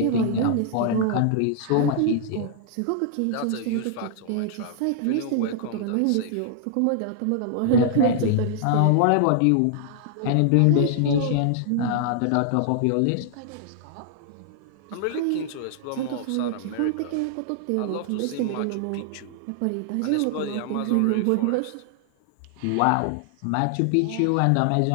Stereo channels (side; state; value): both; different; correlation -0.01